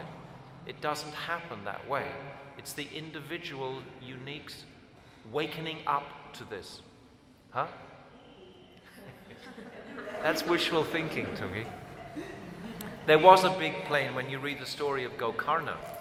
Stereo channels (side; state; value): both; identical; correlation 1.00